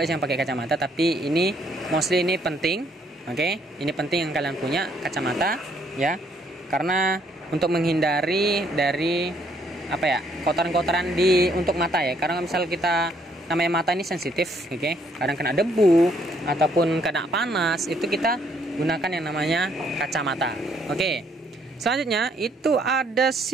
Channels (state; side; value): normal; both; correlation 0.68